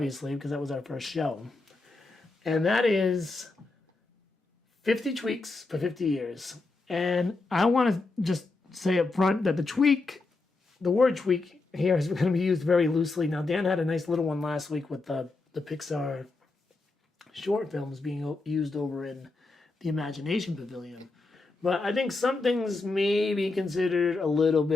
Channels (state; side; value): quieter; right; 3.5 dB